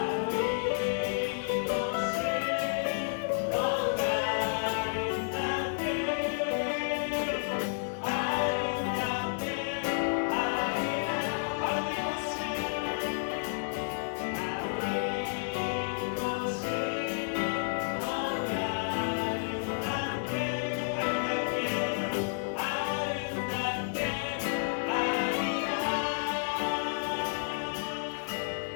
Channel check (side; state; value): right; silent; digital silence